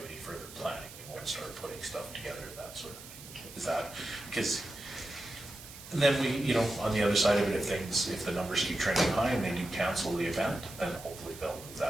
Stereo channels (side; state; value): right; noise; hiss, 15 dB below the sound